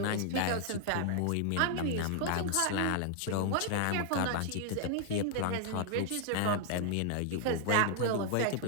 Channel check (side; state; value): both; different; correlation 0.00